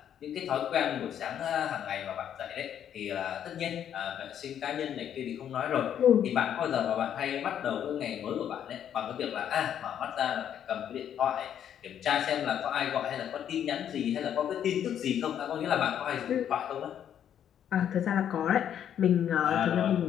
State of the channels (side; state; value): right; quieter; 9.5 dB